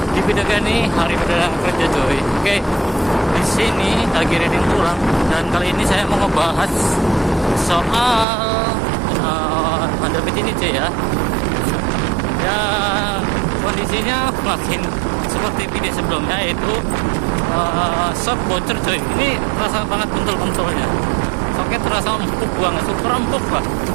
di video ini hari perdana kerja coy. Oke, di sini lagi reading pulang dan kali ini saya mau ngebahas soal Honda Beat ini cuy ya. Ya kondisinya makin seperti video sebelumnya, yaitu shock bocor coy. Ini terasa banget bentul-bentulnya. Shocknya terasa empuk banget, super empuk lah.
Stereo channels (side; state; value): left; drops out; at 8.2 s